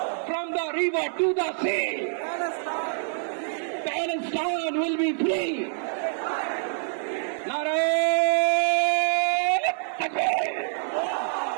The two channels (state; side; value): silent; left; 61 dB below the other